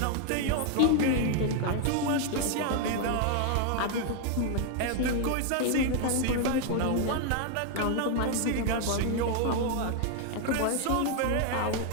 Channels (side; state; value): both; different; correlation 0.01